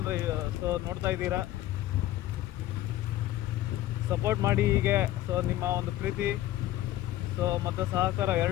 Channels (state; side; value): quieter; right; 14.4 dB